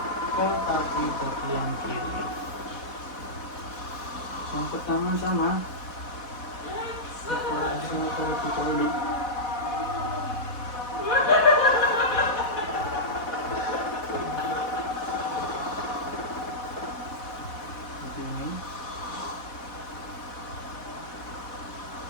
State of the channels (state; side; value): late; right; 4.1 ms